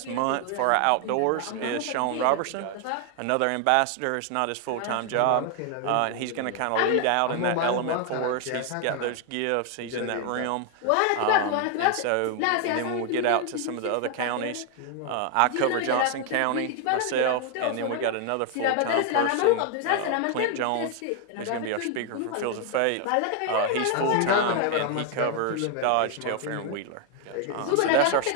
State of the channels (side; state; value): both; different; correlation 0.00